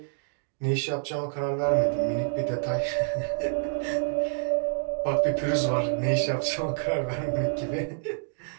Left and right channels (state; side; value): silent; left; digital silence